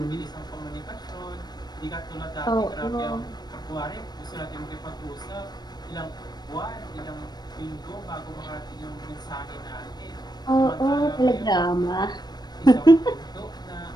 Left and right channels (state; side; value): late; right; 0.20 ms